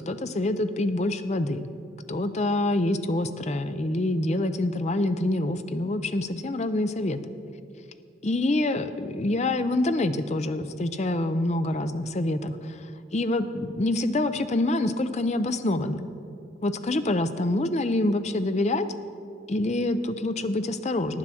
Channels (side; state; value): both; normal; correlation 0.66